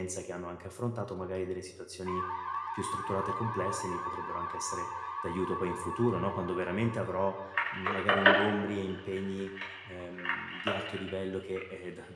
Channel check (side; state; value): both; identical; correlation 1.00